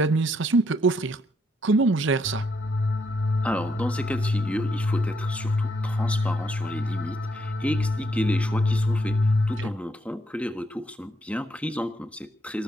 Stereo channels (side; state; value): both; normal; correlation 0.74